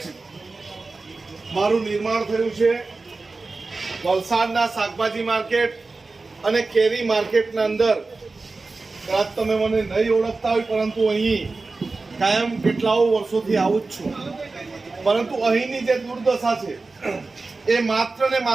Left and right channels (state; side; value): quieter; left; 3.7 dB